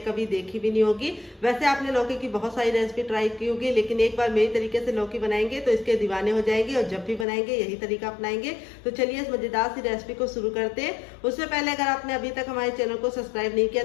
देखी भी नहीं होगी। वैसे आपने लौकी की बहुत सारी रेसिपी ट्राई की होगी, लेकिन एक बार मेरी तरीके से लौकी बनाएंगे तो इसके दीवाने हो जाएंगे, और जब भी बनाएंगे यही तरीका अपनाएंगे। तो चलिए इस मजेदार सी रेसिपी को शुरू करते हैं। उससे पहले अगर आपने अभी तक हमारे चैनल को सब्सक्राइब नहीं किया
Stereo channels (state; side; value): drops out; right; at 7.2 s